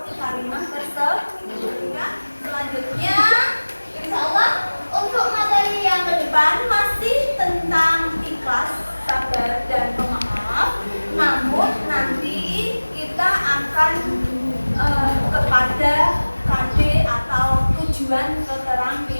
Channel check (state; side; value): inverted; both; correlation -1.00